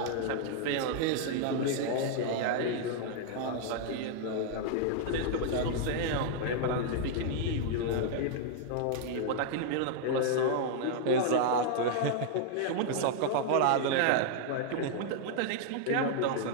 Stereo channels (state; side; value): different; both; correlation -0.01